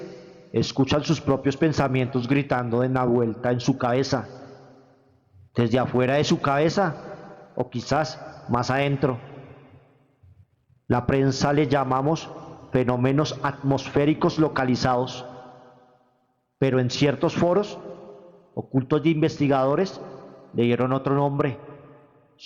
escuchan sus propios pensamientos gritando en la vuelta en su cabeza, desde afuera de su cabeza o quizás más adentro. La prensa le llamamos fenómenos atmosféricos localizados, pero en ciertos foros ocultos de investigadores le dieron otro nombre:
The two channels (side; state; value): both; identical; correlation 1.00